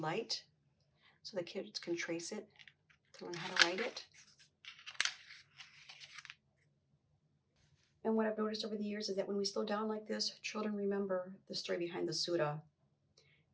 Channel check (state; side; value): identical; both; correlation 1.00